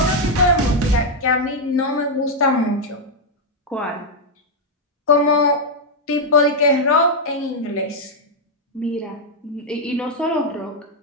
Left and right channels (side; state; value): both; normal; correlation -0.01